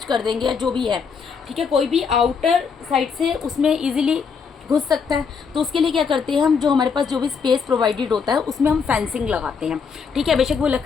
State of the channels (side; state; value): right; quieter; 5.9 dB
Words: कर देंगे या जो भी है। ठीक है, कोई भी आउटर साइड से उसमें ईजिली घुस सकता है, तो उसके लिए क्या करते हैं हम, जो हमारे पास जो भी स्पेस प्रोवाइडेड होता है उसमें हम फेंसिंग लगाते हैं। ठीक है, बेशक वो